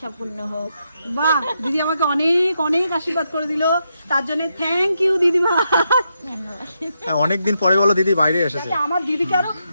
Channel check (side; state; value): both; inverted; correlation -0.83